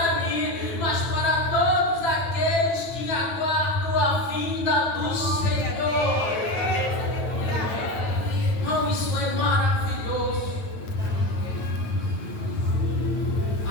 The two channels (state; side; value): late; right; 9.2 ms